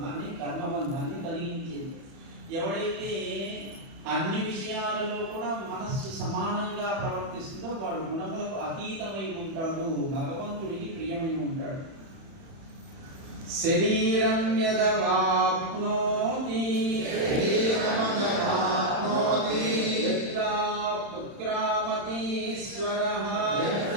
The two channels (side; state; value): left; late; 31 ms